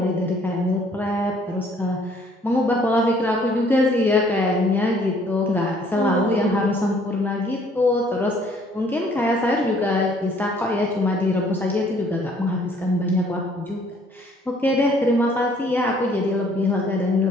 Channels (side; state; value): both; normal; correlation 0.60